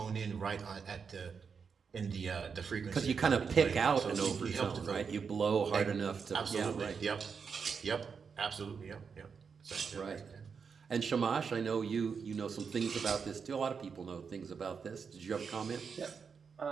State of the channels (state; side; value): quieter; left; 5.9 dB